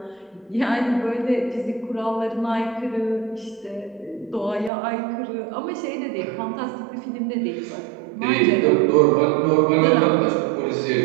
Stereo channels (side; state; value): left; drops out; at 4.7 s